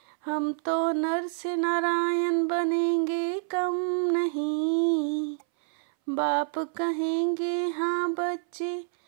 हम तो नर से नारायण बनेंगे कम नहीं। बाप कहेंगे हाँ बच्चे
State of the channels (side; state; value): left; silent; 60 dB below the other